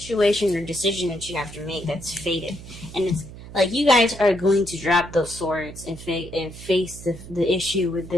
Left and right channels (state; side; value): noise; right; hum, 15 dB below the sound